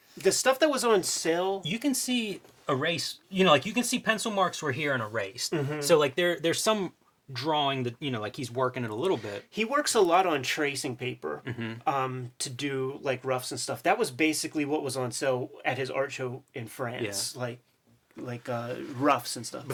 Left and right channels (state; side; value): identical; both; correlation 1.00